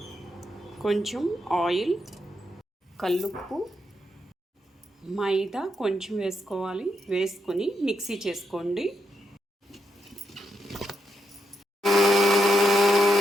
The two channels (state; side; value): normal; both; correlation 0.81